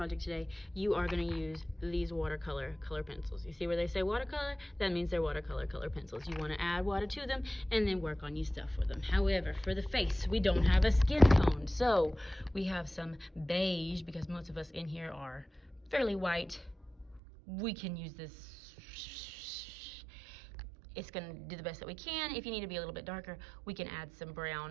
today, you are going to use these watercolor color pencils. You see where they say watercolor? That means they're watercolor color pencils. You want to add water to them and then work on your stuff with them. However, for the face, we don't have a skin tone, so we have some beige, because most of us in here are fairly white. We can use this. It's going to do the best that we can. If you need to be a little bit darker, we can add some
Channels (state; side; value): drops out; left; at 17.2 s